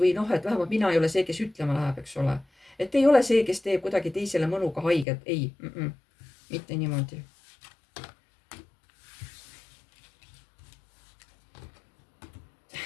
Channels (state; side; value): drops out; right; at 5.1 s